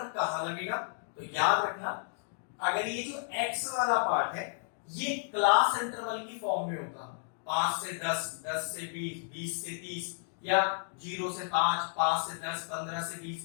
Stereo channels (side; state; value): right; silent; digital silence